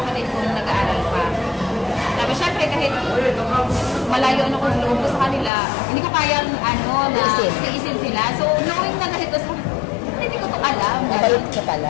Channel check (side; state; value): right; drops out; at 5.5 s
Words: kong nag-aaral pa. Tapos syempre, kahit malayo ano kung loob ko sa kanila, hindi ko kayang na iisin sila. So, knowing na kahit ko, hindi ko ito alam. Nabalot ka